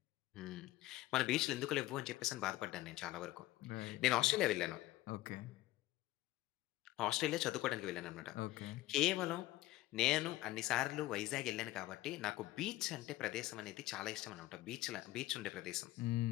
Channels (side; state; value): right; quieter; 16.9 dB